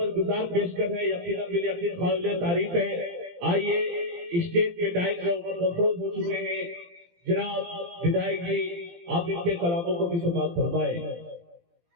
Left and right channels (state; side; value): late; left; 17 ms